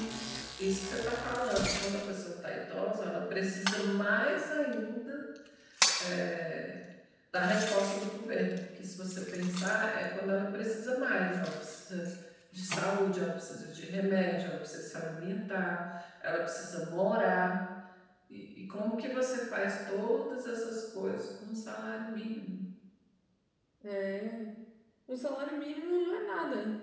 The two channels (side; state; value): both; identical; correlation 1.00